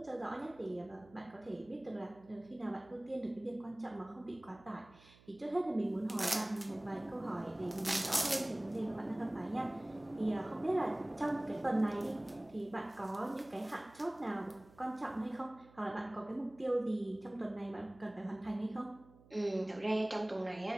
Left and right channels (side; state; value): right; noise; hum, 24 dB below the sound